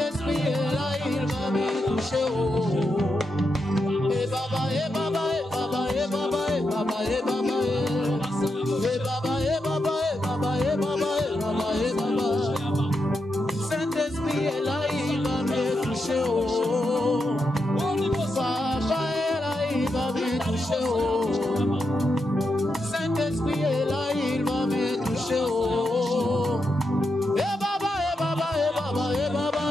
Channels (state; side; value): normal; both; correlation 0.85